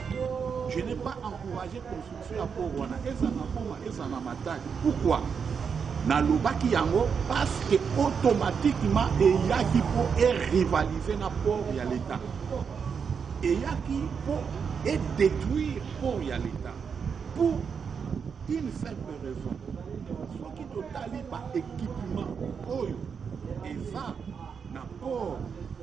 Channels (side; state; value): left; quieter; 6.4 dB